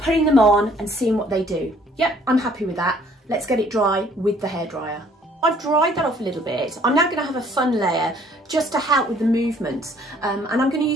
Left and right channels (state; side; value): normal; both; correlation 0.60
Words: them on and seeing what they do. Yep, I'm happy with that. Let's get it dry with the hairdryer. I've dried that off a little bit. I'm now going to have a fun layer just to help with the movement, and I'm going to